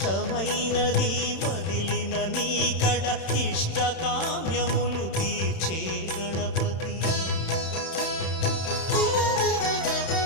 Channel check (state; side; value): late; right; 31 ms